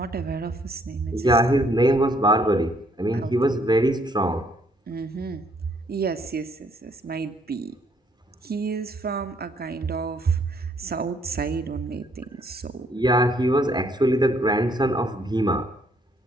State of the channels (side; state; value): both; normal; correlation 0.67